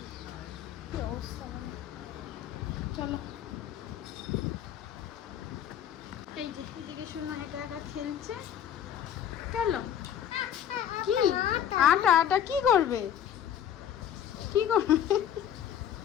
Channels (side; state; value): right; quieter; 9.7 dB